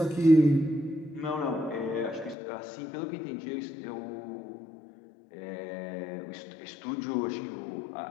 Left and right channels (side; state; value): right; drops out; at 2.4 s